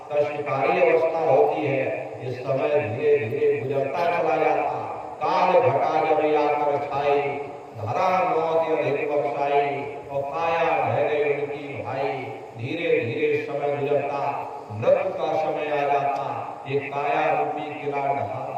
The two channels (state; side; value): identical; both; correlation 1.00